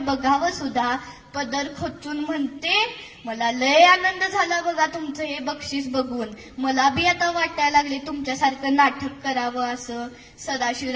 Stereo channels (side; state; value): both; identical; correlation 1.00